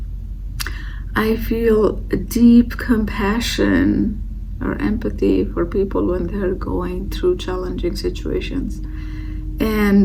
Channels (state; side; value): identical; both; correlation 1.00